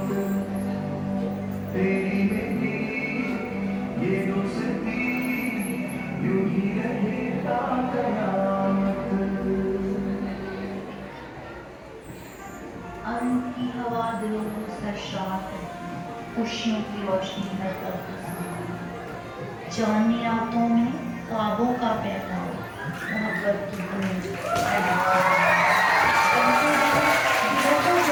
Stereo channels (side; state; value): both; identical; correlation 1.00